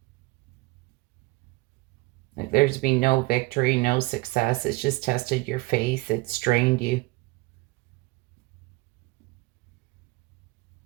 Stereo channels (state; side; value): quieter; left; 22.1 dB